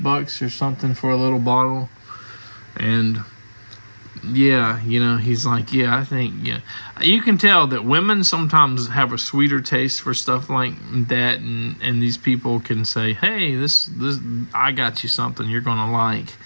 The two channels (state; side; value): inverted; both; correlation -1.00